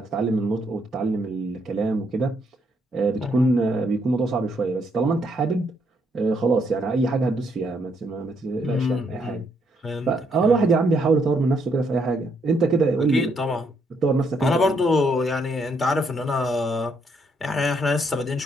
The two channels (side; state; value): both; normal; correlation 0.73